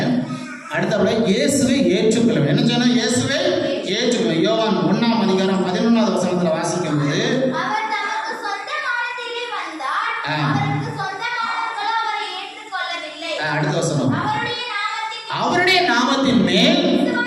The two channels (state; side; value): identical; both; correlation 1.00